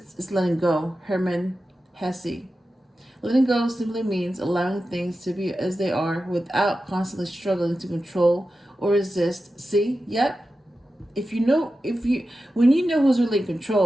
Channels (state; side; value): normal; both; correlation 0.92